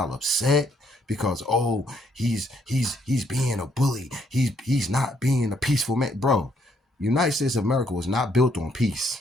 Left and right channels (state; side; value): normal; both; correlation 0.70